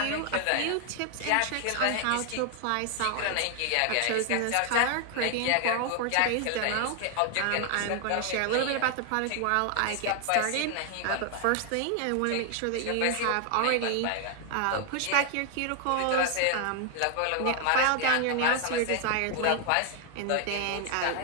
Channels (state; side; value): different; both; correlation 0.00